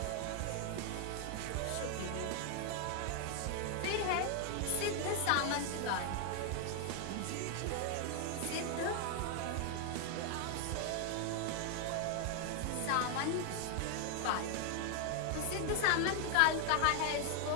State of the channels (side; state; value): both; different; correlation 0.00